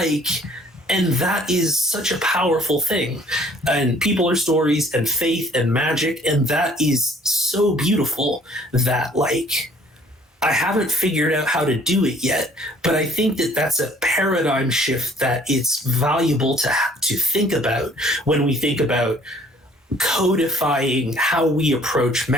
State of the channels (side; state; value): both; normal; correlation 0.57